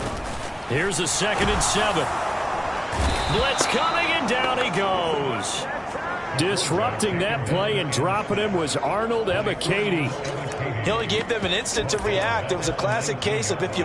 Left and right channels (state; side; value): identical; both; correlation 1.00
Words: Here's a 2nd and 7. Blitz coming, and down he goes. Disrupting that play and dropping him was Arnold Ebiketie. He only gave them an instant to react. It was a classic case of if you